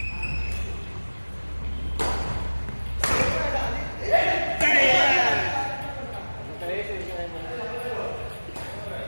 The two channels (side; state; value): both; inverted; correlation -1.00